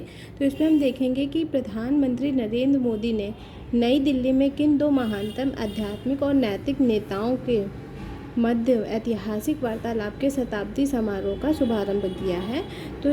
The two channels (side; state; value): both; identical; correlation 1.00